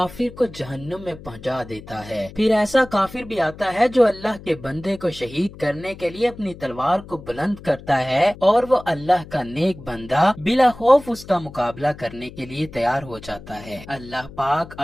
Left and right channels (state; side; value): noise; left; hum, 17 dB below the sound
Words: کو جہنم میں پہنچا دیتا ہے۔ پھر ایسا کافر بھی آتا ہے جو اللہ کے بندے کو شہید کرنے کے لیے اپنی تلوار کو بلند کرتا ہے اور وہ اللہ کا نیک بندہ بلا خوف اس کا مقابلہ کرنے کے لیے تیار ہو جاتا ہے۔ اللہ پاک